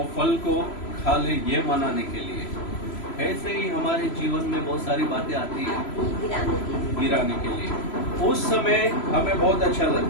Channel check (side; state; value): right; late; 3.0 ms